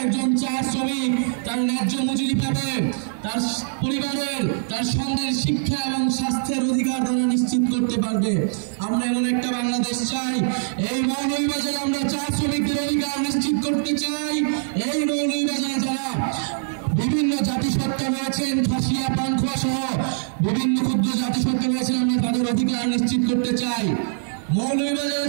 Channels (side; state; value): left; silent; digital silence